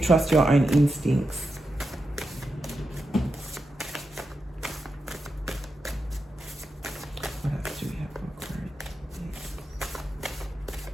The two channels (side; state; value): both; normal; correlation 0.88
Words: your own instincts. What else do we